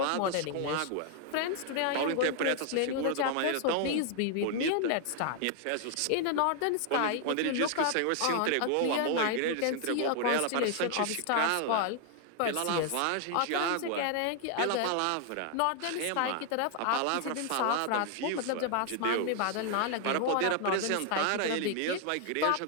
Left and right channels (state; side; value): different; both; correlation 0.00